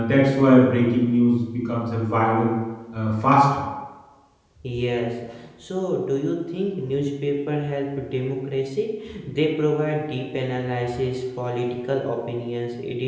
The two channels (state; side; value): identical; both; correlation 1.00